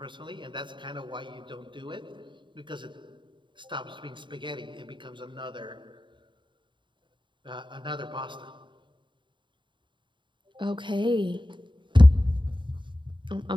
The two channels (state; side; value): late; left; 0.23 ms